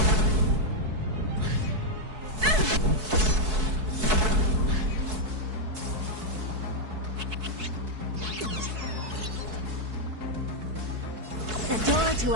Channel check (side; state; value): left; late; 4.6 ms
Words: The door to